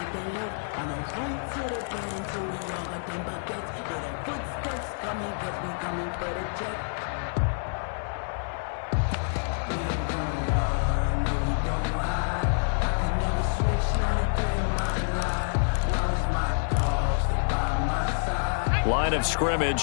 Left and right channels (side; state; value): right; silent; digital silence